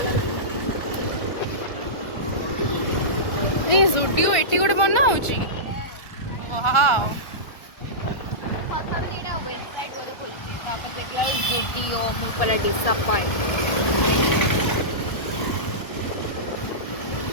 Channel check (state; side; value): late; right; 1.3 ms